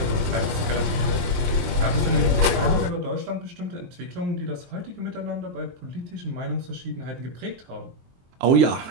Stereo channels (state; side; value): late; left; 23 ms